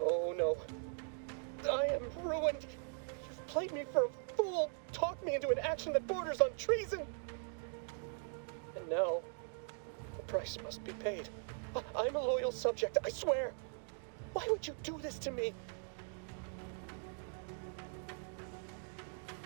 I am ruined. You've played me for a fool, talked me into an action that borders on treason. And now, the price must be paid. I'm a loyal subject, I swear. Why would you do this to me?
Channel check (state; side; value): silent; left; 51 dB below the other